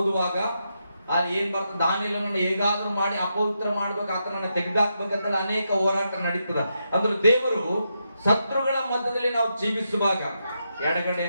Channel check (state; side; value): inverted; both; correlation -0.84